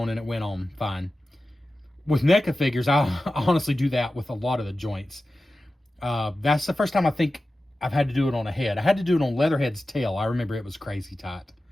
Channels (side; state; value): both; normal; correlation 0.94